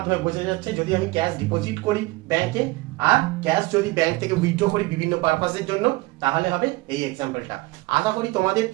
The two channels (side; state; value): left; quieter; 21.8 dB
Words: বোঝা যাচ্ছে যদি আমি ক্যাশ ডিপোজিট করি ব্যাংকে আর ক্যাশ যদি ব্যাংক থেকে উইথড্র করি বিভিন্ন পারপাসের জন্য তাহলে হবে এই এক্সাম্পলটা। আশা করি তোমাদের